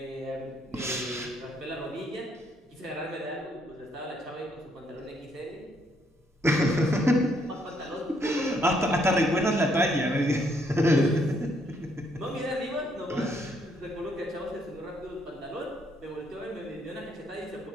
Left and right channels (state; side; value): normal; both; correlation 0.71